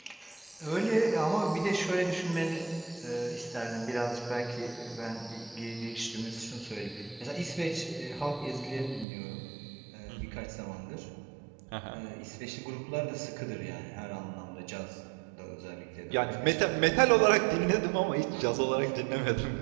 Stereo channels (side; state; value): left; drops out; at 9.1 s